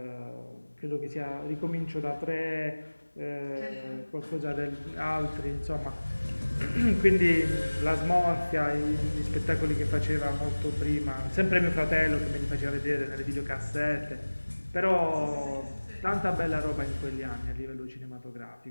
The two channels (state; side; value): inverted; both; correlation -1.00